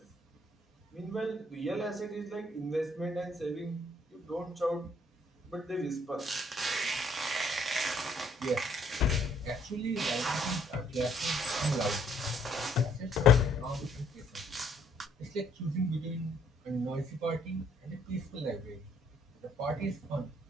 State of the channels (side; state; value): both; normal; correlation 0.65